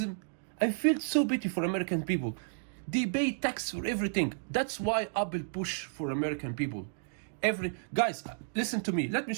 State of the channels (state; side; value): silent; left; digital silence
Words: I feel so pity for American people. They pay tax for everything. That's why Apple push for American people. Guys, listen to me. Let me